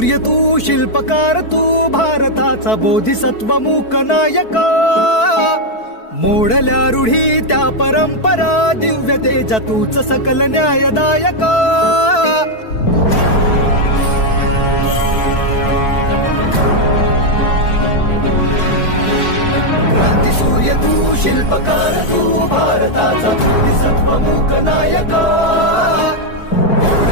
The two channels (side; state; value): right; late; 4.6 ms